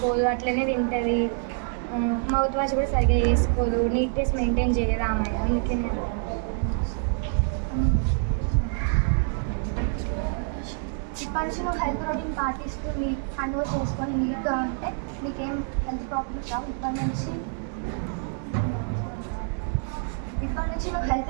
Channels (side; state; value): left; silent; 55 dB below the other